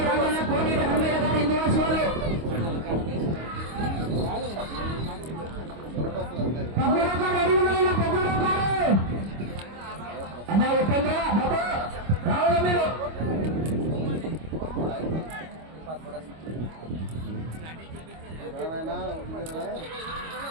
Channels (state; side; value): late; left; 25 ms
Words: రావాలన్న కోనేటి హనుమయ్య గారు, ఇందువాసి వాళ్ళు 13 గారు రెడీ ఉండాలన్న. 13 గారు అన్న ఉపేంద్ర బాబు రావాలా మీరు.